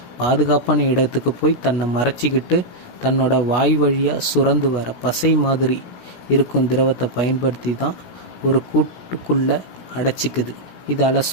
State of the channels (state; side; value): late; right; 16 ms